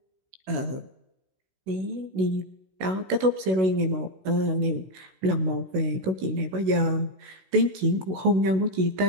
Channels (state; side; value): late; left; 16 ms